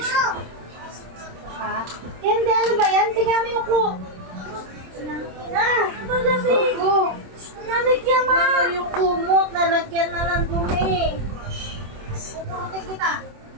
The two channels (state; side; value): late; left; 26 ms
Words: Ha? Hindi, ano ba yan? Tingnan mo yung ko. Na! Malamig! Oh, Malamig yan, ma! ano yung kumot? Nalagyan na ng dumi. Puputin kita.